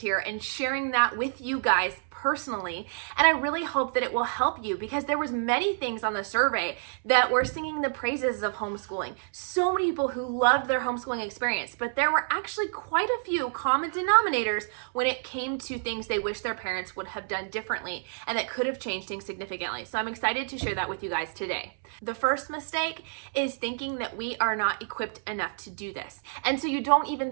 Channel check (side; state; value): left; silent; 59 dB below the other